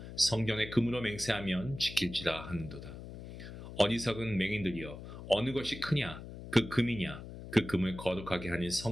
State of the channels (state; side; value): noise; left; hum, 12 dB below the sound